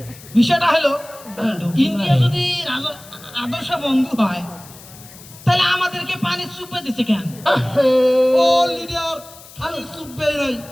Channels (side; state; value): left; noise; hiss, 19 dB below the sound